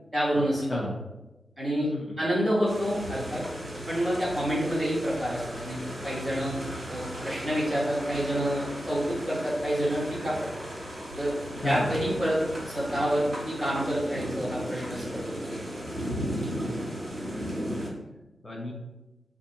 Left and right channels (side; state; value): both; normal; correlation 0.89